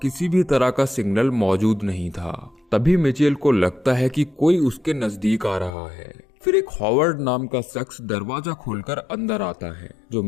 किसी भी तरह का सिग्नल मौजूद नहीं था। तभी मिचेल को लगता है कि कोई उसके नजदीक आ रहा है। फिर एक हॉवर्ड नाम का शख्स दरवाजा खोलकर अंदर आता है, जो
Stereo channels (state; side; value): drops out; right; at 5.7 s